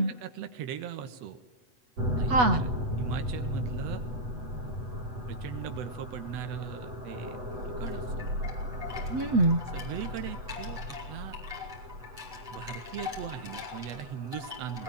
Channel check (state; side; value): late; left; 8.1 ms